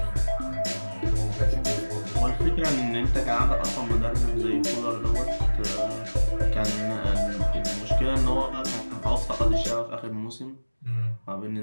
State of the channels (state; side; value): inverted; both; correlation -1.00